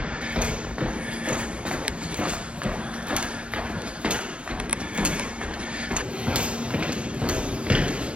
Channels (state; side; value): late; left; 0.060 ms